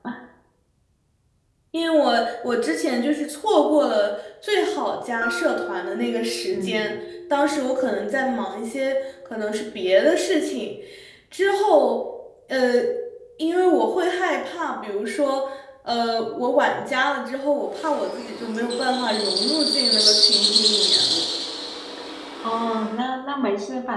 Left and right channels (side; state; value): both; identical; correlation 1.00